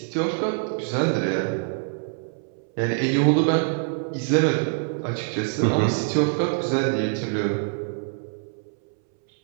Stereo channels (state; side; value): silent; left; 62 dB below the other